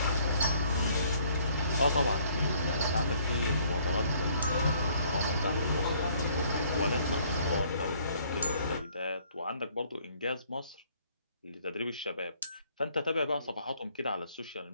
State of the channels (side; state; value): both; inverted; correlation -0.62